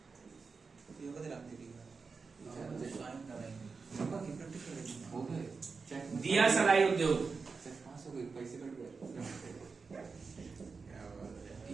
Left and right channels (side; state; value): left; quieter; 4.7 dB